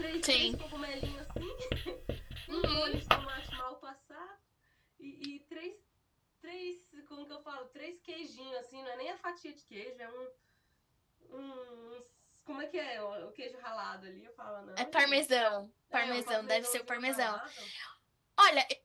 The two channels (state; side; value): identical; both; correlation 1.00